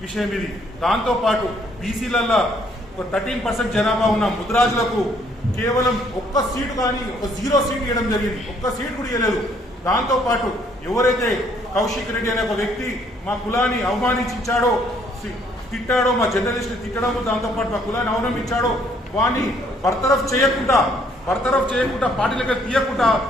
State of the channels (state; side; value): normal; both; correlation 0.65